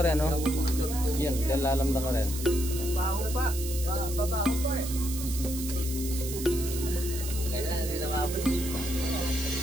no? Yan, kilalam na ka rin. baho pa. Babaho pa eh.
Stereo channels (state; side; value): noise; right; hiss, 8 dB below the sound